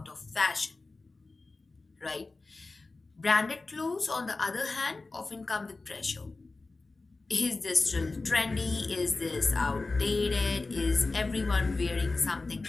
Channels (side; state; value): right; quieter; 3.5 dB